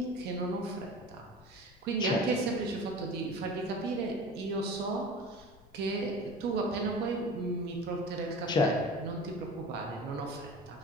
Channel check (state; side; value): noise; left; rumble, 25 dB below the sound